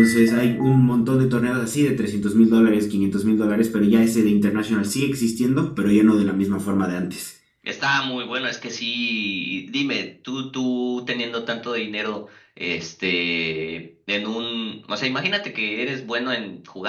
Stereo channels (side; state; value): both; identical; correlation 1.00